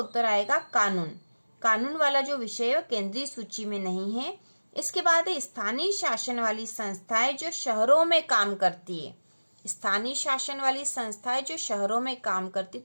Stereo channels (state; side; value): inverted; both; correlation -1.00